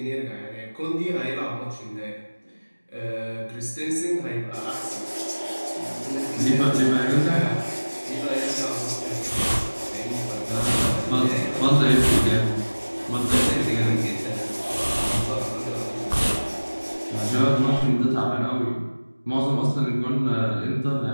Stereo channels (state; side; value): inverted; both; correlation -1.00